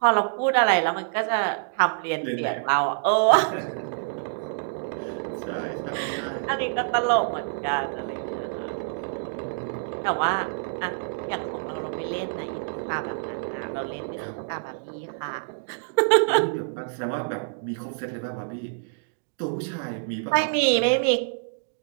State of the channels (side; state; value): left; silent; digital silence